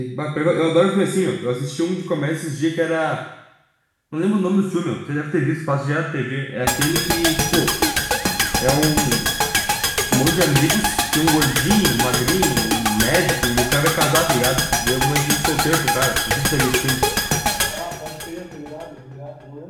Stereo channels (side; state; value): both; identical; correlation 1.00